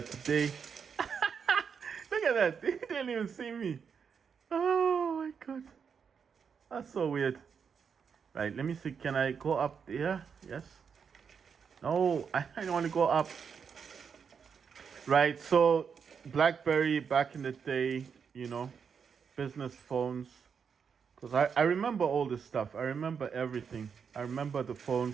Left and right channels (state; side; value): quieter; left; 6.6 dB